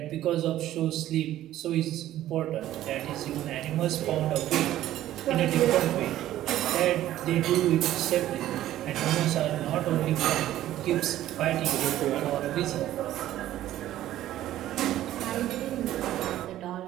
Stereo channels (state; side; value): quieter; left; 13.4 dB